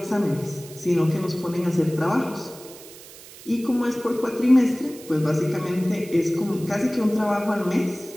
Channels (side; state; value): right; noise; hiss, 18 dB below the sound